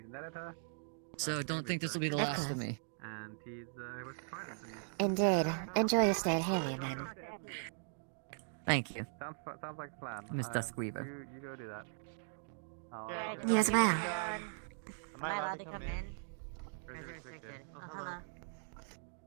editor. So don't think this will be the Of last of course. me. And he's was trying to Indeed. Enjoy your stay at Helium, then. Thank you. Sounds like a plan. Miss Duskweaver. You go do that. You as well. Am I allowed to come in? Or is it restricted? Oh, hello.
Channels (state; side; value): silent; left; digital silence